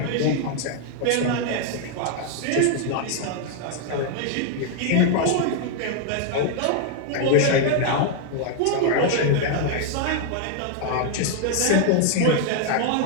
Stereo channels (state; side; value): different; both; correlation 0.00